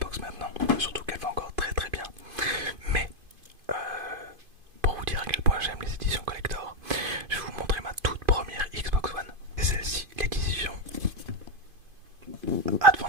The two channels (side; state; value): left; late; 2.5 ms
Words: maintenant, surtout qu'elle va encore très très bien. Mais pour vous dire à quel point j'aime les éditions collector, je vais vous montrer ma toute première Xbox One. C'est celle-ci, l'édition